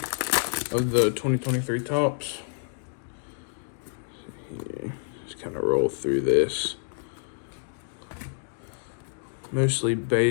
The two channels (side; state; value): right; silent; digital silence